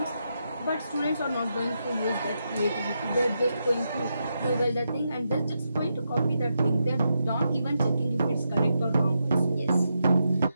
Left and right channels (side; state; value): both; inverted; correlation -0.84